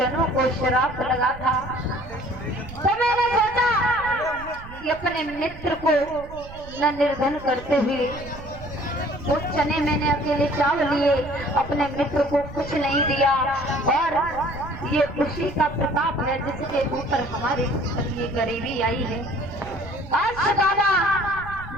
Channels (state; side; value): noise; right; rumble, 15 dB below the sound